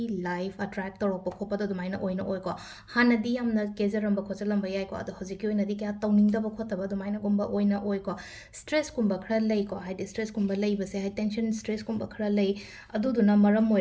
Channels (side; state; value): both; identical; correlation 1.00